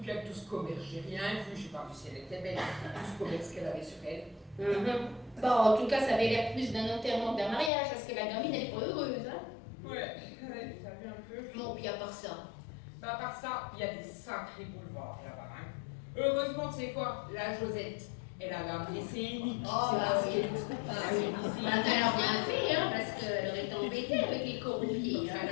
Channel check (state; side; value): drops out; right; at 7.7 s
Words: puis avec tout ce commerce, j'ai rien vu, j'ai pas vu si elle était belle, tout ce commerce qu'elle avait sur elle. Bon, en tout cas, ça avait l'air plus d'un enterrement que d'un mariage, parce que la gamine, elle est pas heureuse, hein? Ouais, t'as vu un peu. Bon, puis à part ça. Bah, à part ça, il y a des sacrés boulevards là-bas, hein. Heureusement, tu sais quoi, la Josette, elle avait appelé ses uniques. Oh, bah oui. Elle a bien fait, hein, parce qu'elle aurait été embêtée avec les corruptiers. Elle